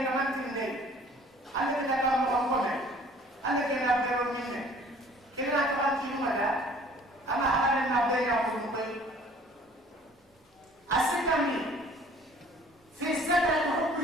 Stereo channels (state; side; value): normal; both; correlation 0.53